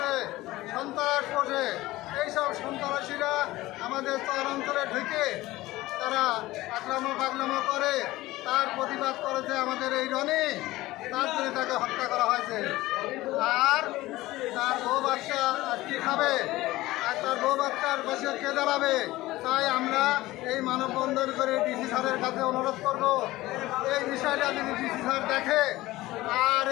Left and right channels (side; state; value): right; quieter; 17.9 dB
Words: সন্ত্রাস পোষে। এইসব সন্ত্রাসীরা আমাদের চরাঞ্চলে ঢুকে তারা আক্রমণ করে। তার প্রতিবাদ করেছে আমাদের এই রনি, তার জন্য তাকে হত্যা করা হয়েছে। আর তার বউ বাচ্চা আর কি খাবে, আর তার বউ বাচ্চার পাশে কে দাঁড়াবে? তাই আমরা এই মানববন্ধন করে ডিসি স্যারের কাছে অনুরোধ করব, এই বিষয়টা যদি ডিসি স্যার দেখে আর